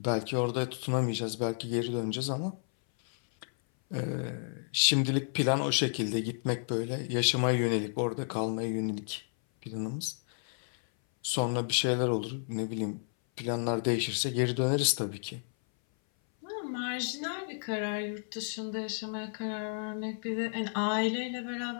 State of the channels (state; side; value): silent; right; 57 dB below the other